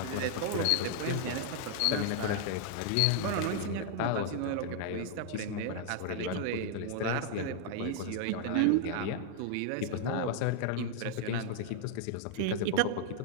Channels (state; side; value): different; both; correlation 0.00